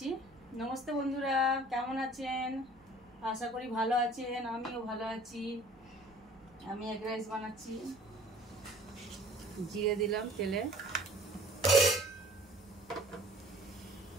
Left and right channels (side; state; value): right; noise; hum, 29 dB below the sound